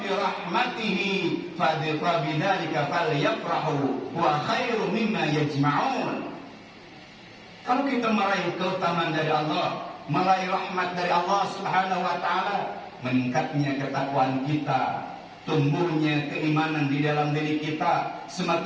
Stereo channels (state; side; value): identical; both; correlation 1.00